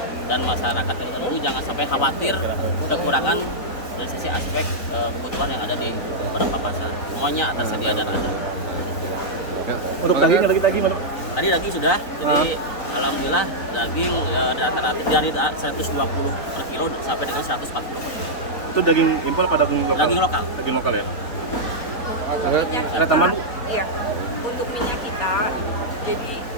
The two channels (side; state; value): right; late; 3.9 ms